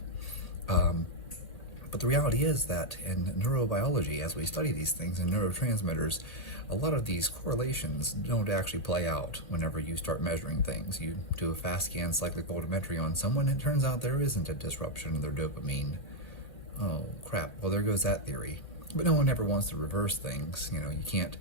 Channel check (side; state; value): right; late; 1.8 ms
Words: But the reality is that in neurobiology, as we study these things in neurotransmitters, a lot of these correlations don't actually play out whenever you start measuring things. You do a fast scan cyclic voltammetry on someone, and it turns out there isn't a disruption of their dopamine. Oh, crap. Well, there goes that theory. But no one ever wants to reverse things. You know, you can't